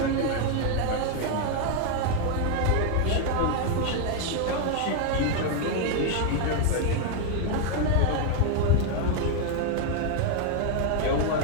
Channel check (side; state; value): both; different; correlation 0.00